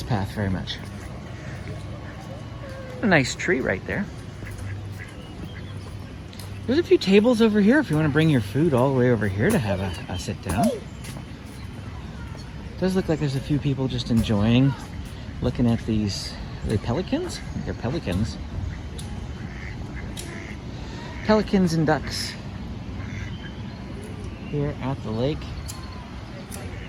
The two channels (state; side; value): identical; both; correlation 1.00